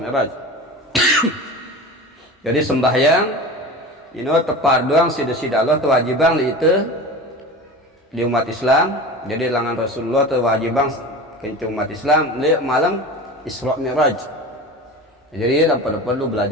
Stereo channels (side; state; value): both; normal; correlation 0.32